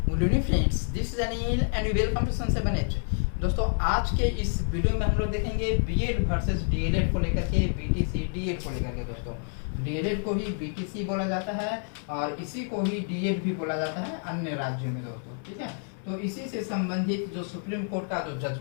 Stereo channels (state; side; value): silent; right; 56 dB below the other